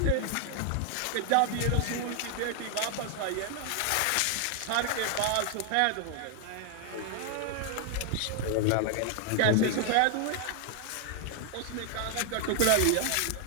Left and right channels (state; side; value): different; both; correlation 0.00